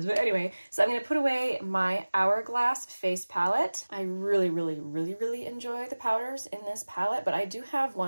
But anyway, so I'm going to put away my Hourglass face palette. I really, really, really, really enjoy the powders in this palette, but I do have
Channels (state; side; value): inverted; both; correlation -1.00